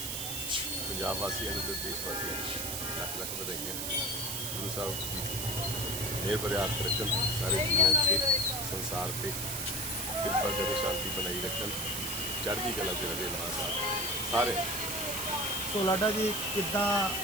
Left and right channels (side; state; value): right; noise; hiss, 3 dB below the sound